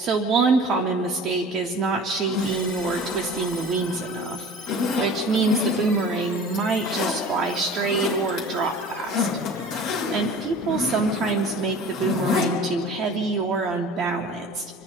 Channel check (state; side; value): normal; both; correlation 0.42